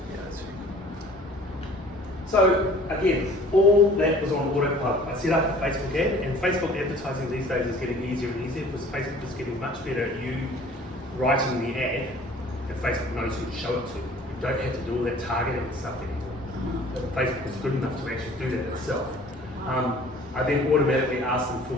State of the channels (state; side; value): normal; both; correlation 0.50